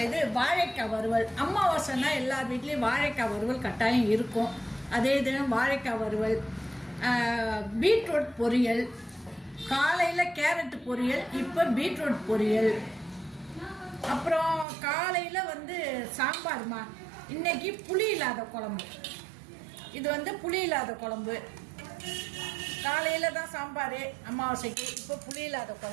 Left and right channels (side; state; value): left; drops out; at 14.7 s